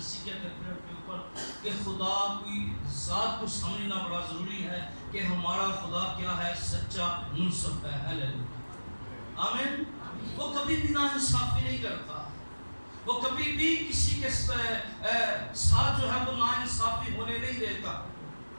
سیکھے تھے پریئر کے اوپر کہ خدا کی ذات کو سمجھنا بڑا ضروری ہے کہ ہمارا خدا کیا ہے؟ سچا منصف ہے. ہیلیلویا. آمین. وہ کبھی بھی ناانصافی نہیں کرتا, وہ کبھی بھی کسی کے ساتھ جو ہے وہ ناانصافی ہونے نہیں دیتا.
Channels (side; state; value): both; inverted; correlation -1.00